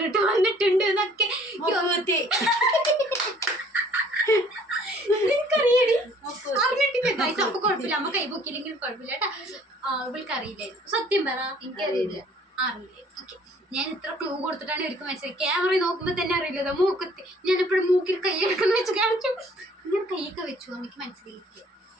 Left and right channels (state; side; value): normal; both; correlation 0.57